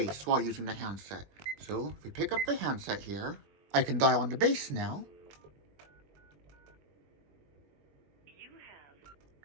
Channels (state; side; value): late; left; 21 ms